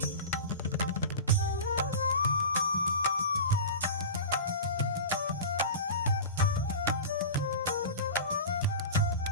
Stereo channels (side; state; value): both; inverted; correlation -0.30